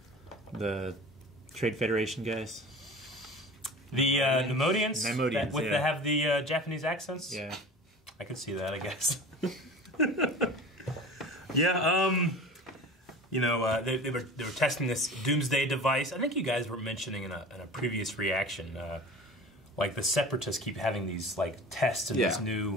Trade Federation guys? The Nemodians? Nemodians, that have the Japanese accents? Yeah. I can see that, I guess. Yeah, they were testing this doomsday device. I think you guys were mentioning in a previous reaction, like the Separatists keep having these like tests and these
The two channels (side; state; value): both; normal; correlation 0.37